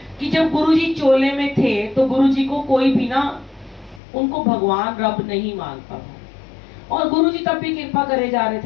कि जब गुरुजी चोले में थे तो गुरुजी को कोई भी ना उनको भगवान रब नहीं मानता था। और गुरुजी तब भी कृपा करे जा रहे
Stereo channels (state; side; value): drops out; right; at 4.0 s